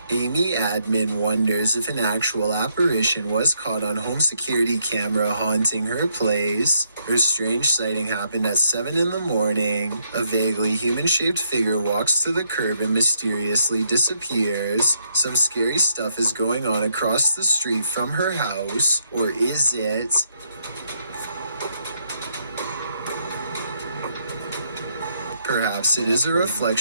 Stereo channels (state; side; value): inverted; both; correlation -0.76